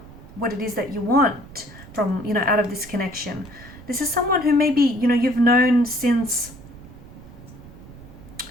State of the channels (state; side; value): noise; right; rumble, 18 dB below the sound